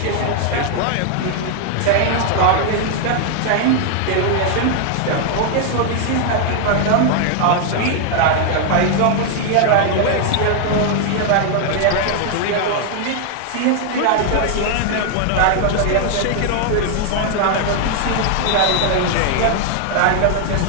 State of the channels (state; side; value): different; both; correlation 0.00